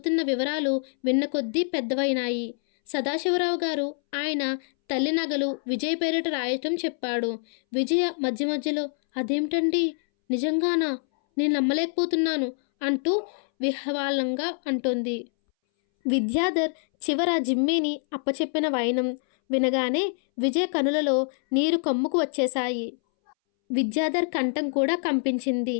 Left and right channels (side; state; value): right; silent; 61 dB below the other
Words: వివరాలు విన్న కొద్దీ పెద్దవైనాయి. సదాశివరావు గారు ఆయన తల్లి నగలు విజయ్ పేరిట రాయటం చెప్పాడు. విజయ మధ్య మధ్యలో, అదేమిటండి, నిజంగానా? నేను నమ్మలేకపోతున్నాను అంటూ విహ్వలంగా అంటోంది. విద్యాధర్ చివర జిమ్మీని అప్పచెప్పిన వైనం వినగానే విజయ కనులలో నీరు కమ్ముకు వచ్చేశాయి. విద్యాధర్ కంఠం కూడా కంపించింది.